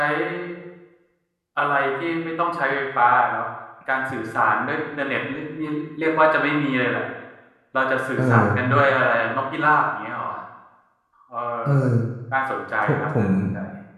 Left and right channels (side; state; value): both; identical; correlation 1.00